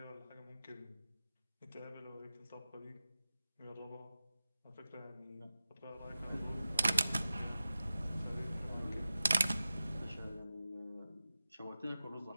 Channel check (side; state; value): both; inverted; correlation -0.95